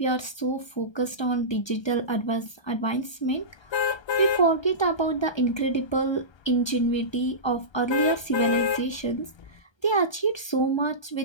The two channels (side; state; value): right; late; 1.3 ms